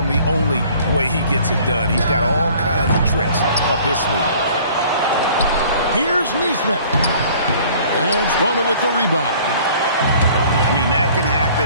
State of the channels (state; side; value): inverted; both; correlation -0.52